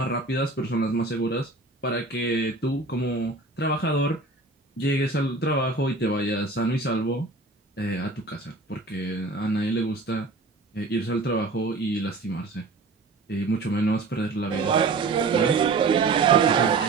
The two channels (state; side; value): quieter; left; 3.6 dB